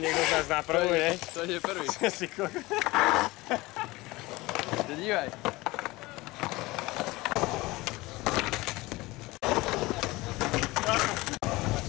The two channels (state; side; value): quieter; right; 20.9 dB